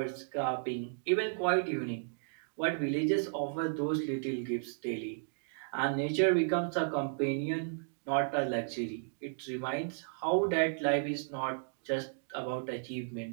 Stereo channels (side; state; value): left; silent; digital silence